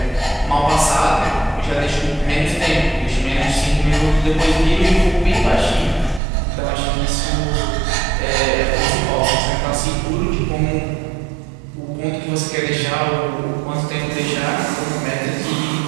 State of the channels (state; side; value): drops out; left; at 6.2 s